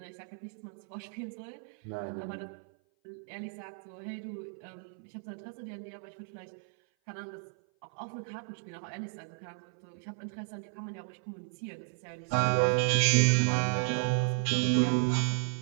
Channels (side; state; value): left; silent; 55 dB below the other